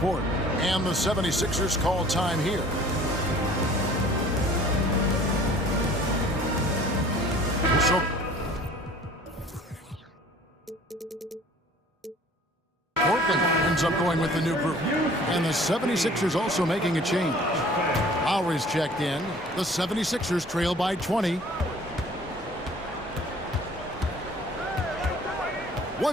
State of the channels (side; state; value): both; normal; correlation 0.50